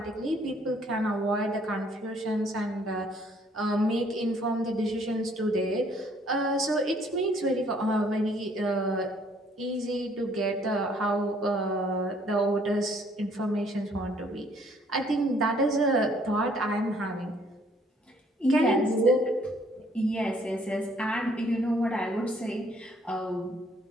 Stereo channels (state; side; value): normal; both; correlation 0.63